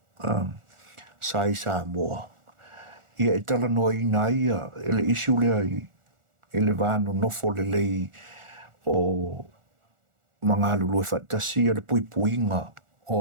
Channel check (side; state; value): left; late; 1.4 ms